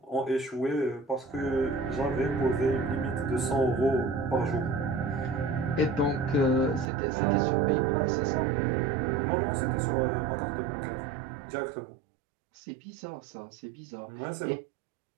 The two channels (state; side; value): drops out; left; at 6.9 s